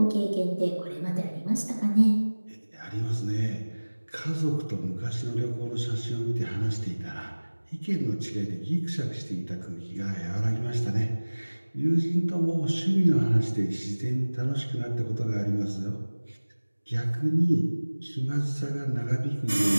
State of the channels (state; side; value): inverted; both; correlation -1.00